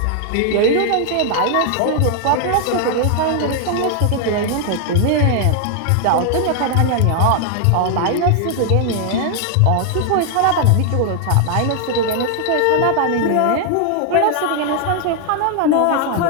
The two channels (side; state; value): both; different; correlation 0.00